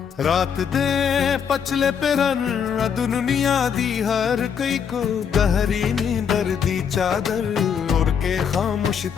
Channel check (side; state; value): right; quieter; 7.4 dB